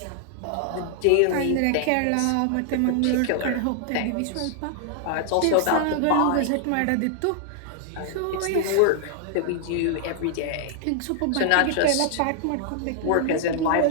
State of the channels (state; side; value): different; both; correlation 0.00